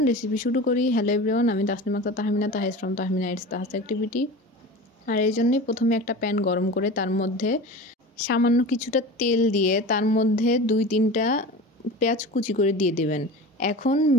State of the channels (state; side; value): normal; both; correlation 0.33